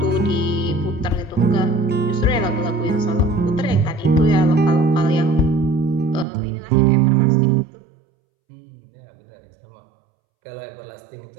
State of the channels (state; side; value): drops out; left; at 6.2 s